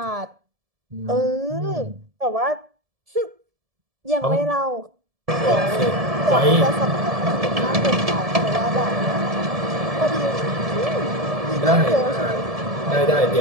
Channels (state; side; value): late; left; 1.7 ms